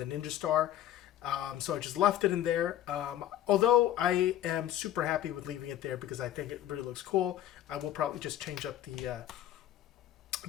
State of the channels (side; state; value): right; quieter; 12.2 dB